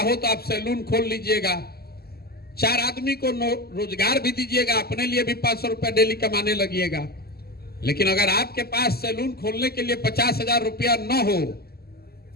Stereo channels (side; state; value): right; late; 0.46 ms